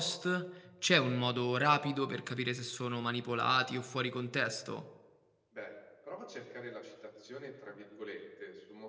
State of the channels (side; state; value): both; identical; correlation 1.00